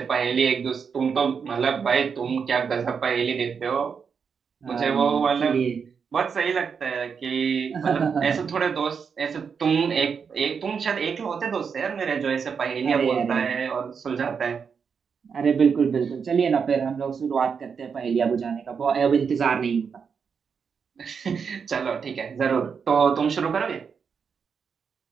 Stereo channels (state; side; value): quieter; left; 6.2 dB